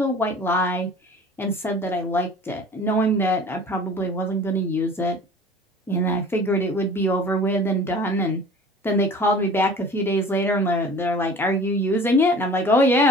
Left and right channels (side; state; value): both; normal; correlation 0.44